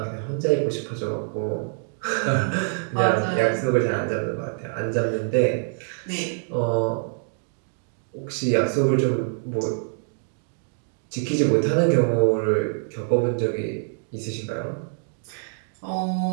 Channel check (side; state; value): left; silent; 62 dB below the other